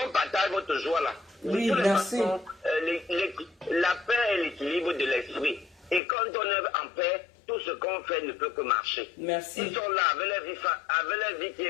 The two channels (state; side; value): drops out; right; at 6.0 s